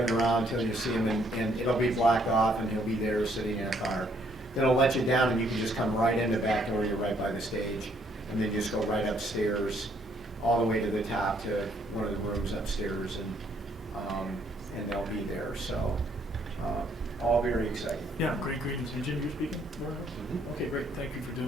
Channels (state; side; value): normal; both; correlation 0.68